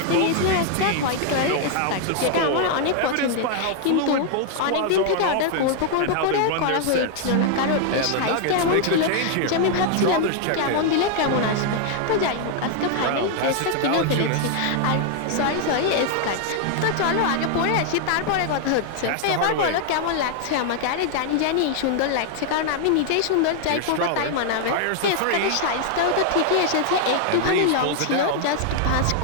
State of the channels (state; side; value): different; both; correlation 0.00